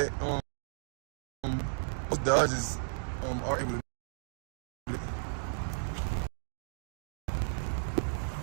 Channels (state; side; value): silent; left; digital silence